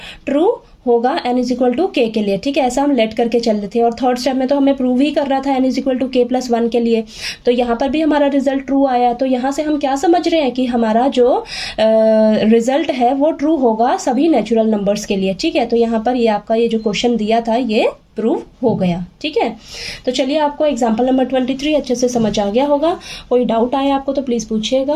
ट्रू होगा n इज इक्वल टू के लिए, ठीक है। ऐसा हम लेट करके चल रहे थे और थर्ड स्टेप में तो हमें प्रूव ही कर रहा था n इज इक्वल टू के प्लस 1 के लिए। तो यहाँ पर भी हमारा रिजल्ट ट्रू आया। तो यहाँ से हम क्या समझ रहे हैं कि हमारा जो रिजल्ट है वो ट्रू होगा सभी नेचुरल नंबर्स के लिए, ठीक है। तो यहाँ पर ये आपका ये जो क्वेश्चन दिया था ये प्रूव हो गया, ठीक है। तो चलिए आपको एग्जाम्पल नंबर 23 अच्छे से समझ आ गया होगा। कोई डाउट आए आपको तो प्लीज़ पूछिएगा,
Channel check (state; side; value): identical; both; correlation 1.00